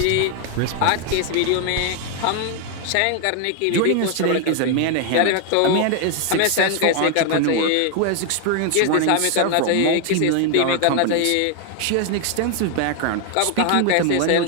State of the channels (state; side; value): different; both; correlation 0.00